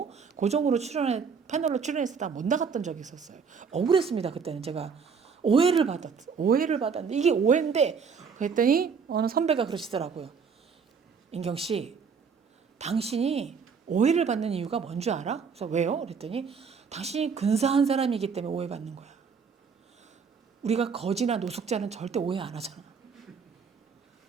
고정으로 패널로 출연했다 못 나갔던 적이 있었어요. 억울했습니다. 그때는 제가 오해를 받았는데 이게 오해인데 그랬더니 어느 선배가 그러시더라고요. 인경 씨, 당신이 오해를 받는 이유가 뭔 줄 알아? 그래서 왜요? 그랬더니 당신이 근사한 사람이기 때문에 오해받는 거야. 우리가 거지나 노숙자는 절대 오해 안 하잖아.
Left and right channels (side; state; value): left; quieter; 5.9 dB